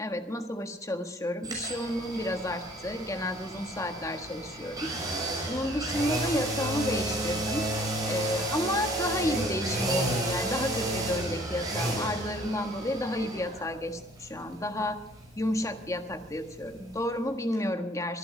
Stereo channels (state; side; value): normal; both; correlation 0.57